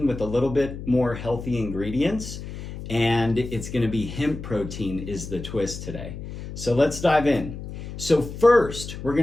with a little bit more healthy ingredients, and it's going to be hemp protein is the twist today. So let's dive in. So first, we're going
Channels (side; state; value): left; noise; hum, 10 dB below the sound